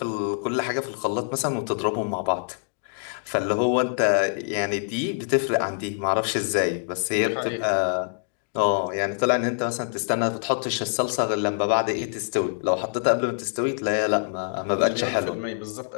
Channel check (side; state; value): right; silent; digital silence